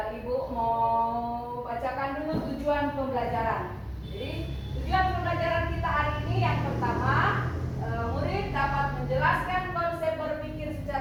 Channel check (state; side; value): identical; both; correlation 1.00